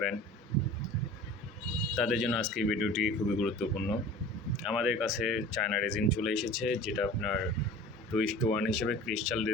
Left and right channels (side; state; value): both; normal; correlation 0.41